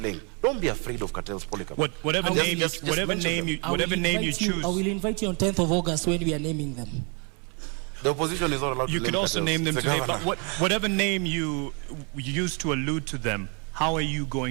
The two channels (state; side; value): quieter; left; 34.6 dB